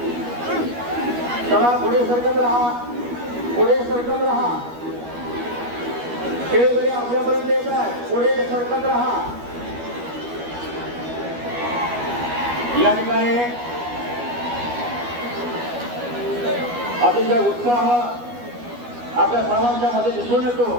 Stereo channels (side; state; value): left; late; 12 ms